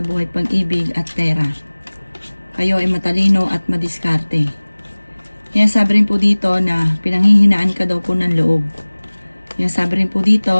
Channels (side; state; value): both; inverted; correlation -1.00